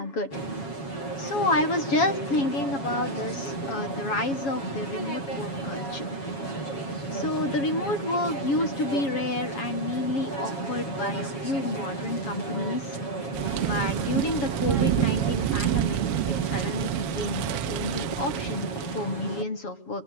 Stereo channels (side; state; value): right; late; 7.3 ms